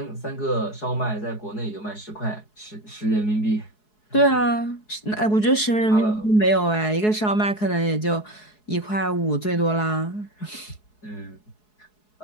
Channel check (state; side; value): late; right; 4.7 ms